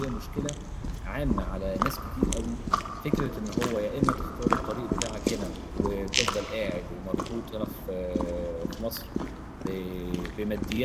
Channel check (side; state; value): both; identical; correlation 1.00